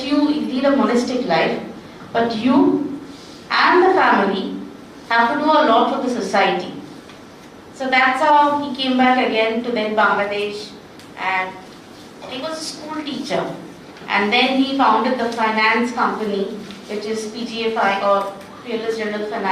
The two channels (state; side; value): identical; both; correlation 1.00